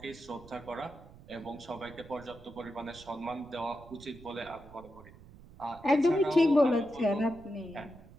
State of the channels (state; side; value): noise; right; rumble, 20 dB below the sound